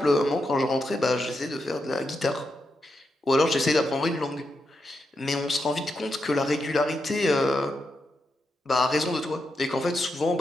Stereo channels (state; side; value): normal; both; correlation 0.85